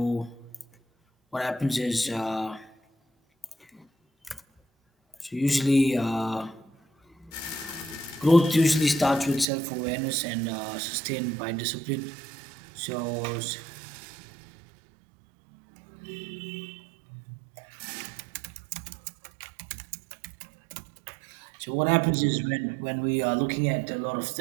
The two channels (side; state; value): left; drops out; at 9.5 s